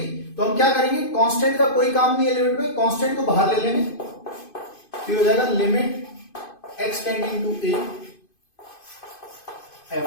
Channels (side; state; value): right; late; 2.5 ms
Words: तो हम क्या करेंगे, कांस्टेंट का कोई काम नहीं है लिमिट में, कांस्टेंट को बाहर ले लेंगे, फिर हो जाएगा limit x tending to a f